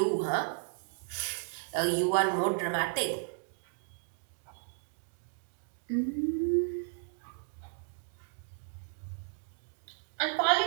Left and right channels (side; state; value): left; silent; digital silence